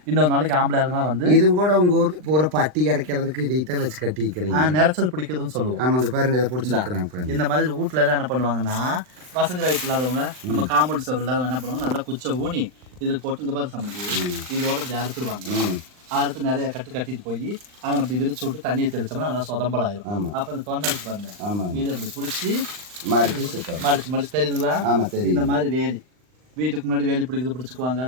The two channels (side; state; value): left; late; 39 ms